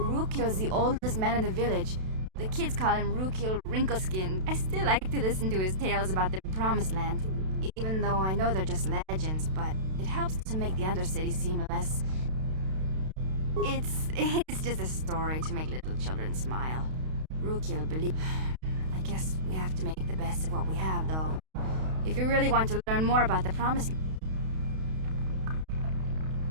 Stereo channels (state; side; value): late; left; 32 ms